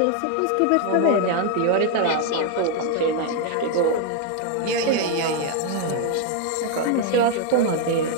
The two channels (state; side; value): different; both; correlation 0.01